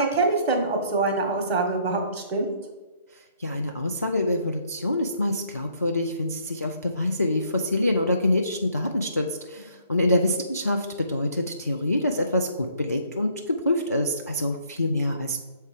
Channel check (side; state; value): both; inverted; correlation -0.64